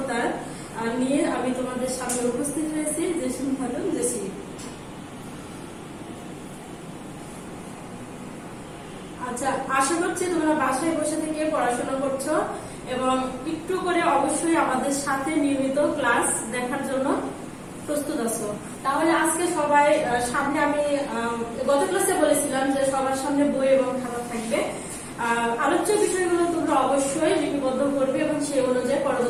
নিয়ে আমি তোমাদের সামনে উপস্থিত হয়েছি। জেসিম খাতুন জেসি। আচ্ছা, আশা করছি তোমরা বাসায় বসে থেকে পড়াশোনা করছো এবং একটু করে অবশ্যই আমাদের সাথে নিয়মিত ক্লাস দেখার জন্য প্রস্তুত আছো। তাহলে আজকে সবাই সামনে আমি গত ক্লাসে বলেছিলাম যে সবার সামনে বই এবং খাতা থাকবে। আলোচ্য বিষয়গুলো তোমরা অবশ্যই লিপিবদ্ধ করবে এবং সেই অনুযায়ী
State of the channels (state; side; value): identical; both; correlation 1.00